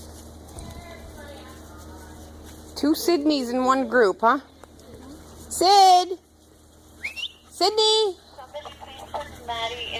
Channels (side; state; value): both; identical; correlation 1.00